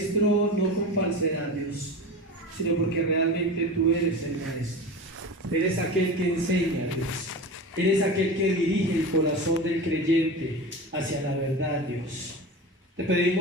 no con falsedad, Dios, sino porque realmente tú eres el maestro. Eres aquel que enseña, Dios. Eres aquel que dirige el corazón del creyente hacia la verdad, Dios. Te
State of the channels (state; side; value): normal; both; correlation 0.29